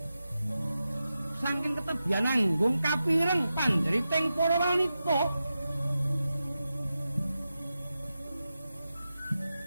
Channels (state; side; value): inverted; both; correlation -0.91